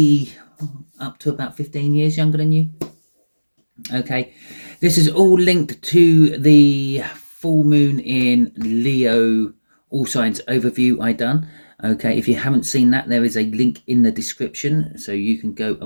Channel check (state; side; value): inverted; both; correlation -1.00